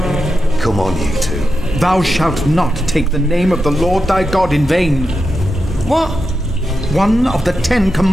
Come on, you two. Thou shalt not take the name of the Lord thy God in vain. What? One of the 10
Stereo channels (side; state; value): both; normal; correlation 0.88